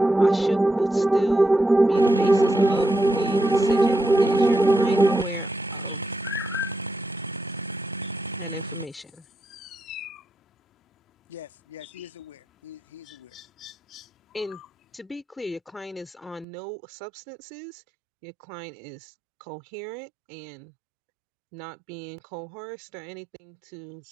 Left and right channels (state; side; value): drops out; left; at 16.4 s